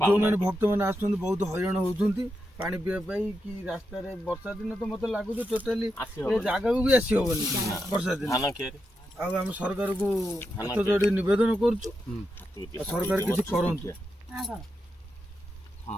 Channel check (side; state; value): both; normal; correlation 0.86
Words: ଯେଉଁମାନେ ଭକ୍ତମାନେ ଆସୁଛନ୍ତି ବହୁତ ହଇରାଣ ହଉଛନ୍ତି ପାଣି ପିଇବା ପାଇଁ, କି ରାସ୍ତାରେ ବର୍ଷା ଦିନ ତ ମତେ ଲାଗୁଛି ଟୋଟାଲି ଏ ଜାଗାକୁ ବି ଆସି ହବନି ବର୍ଷା ଦିନ। ଆଉ ଆମେ ସରକାରକୁ ହାତ ଯୋଡ଼ି ନିବେଦନ କରୁଛୁ, ସରକାର କିଛି କରନ୍ତୁ।